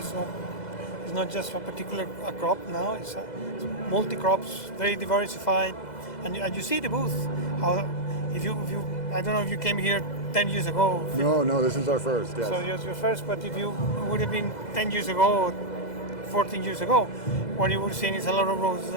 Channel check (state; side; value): late; right; 2.0 ms